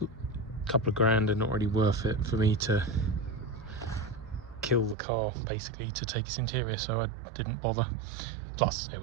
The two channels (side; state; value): left; drops out; at 5.0 s